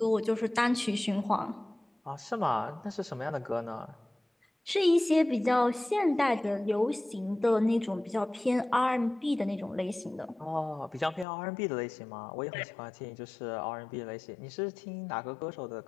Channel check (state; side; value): drops out; right; at 11.2 s